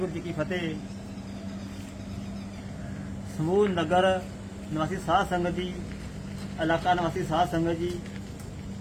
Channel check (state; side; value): identical; both; correlation 1.00